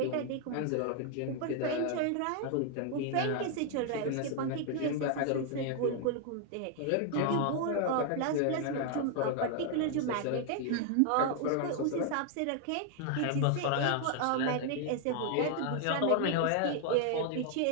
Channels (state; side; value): different; both; correlation 0.00